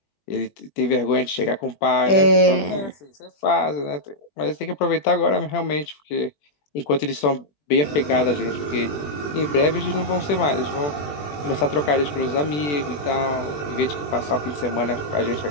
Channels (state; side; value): late; right; 20 ms